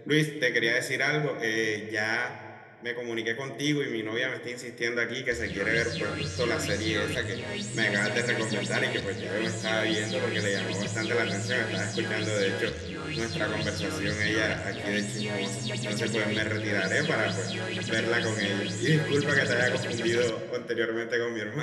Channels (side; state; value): both; identical; correlation 1.00